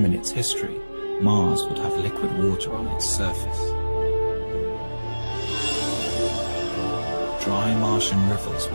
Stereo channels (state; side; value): inverted; both; correlation -1.00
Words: in its history, Mars would have liquid water on its surface. Dry Martian rivers